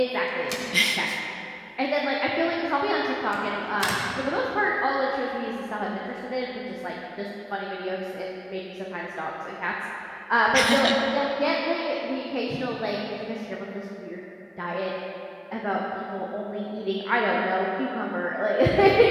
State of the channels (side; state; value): both; identical; correlation 1.00